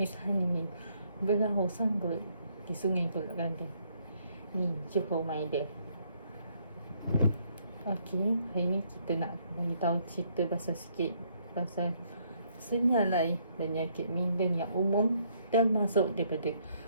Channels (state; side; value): inverted; both; correlation -0.70